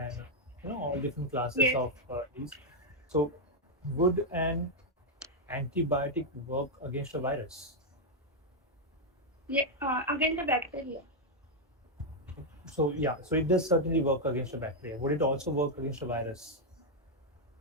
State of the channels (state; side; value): normal; both; correlation 0.00